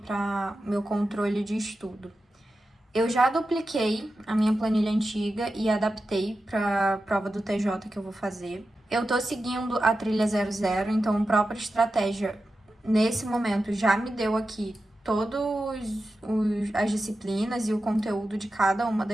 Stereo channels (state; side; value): normal; both; correlation 0.91